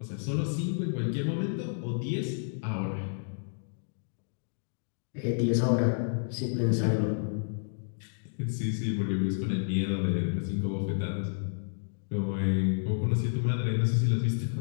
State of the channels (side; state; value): right; silent; digital silence